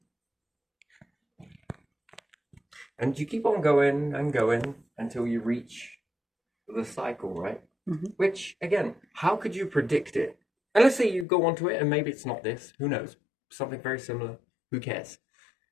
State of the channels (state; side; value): drops out; right; at 11.2 s